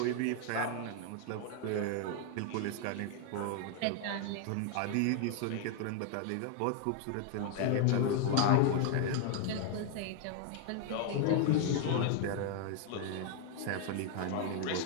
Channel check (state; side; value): different; both; correlation 0.00